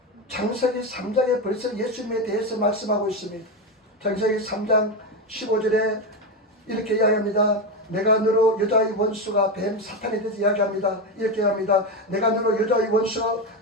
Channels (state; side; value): normal; both; correlation 0.13